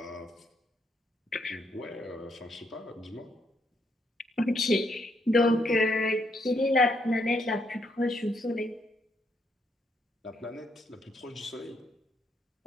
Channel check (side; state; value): both; normal; correlation 0.75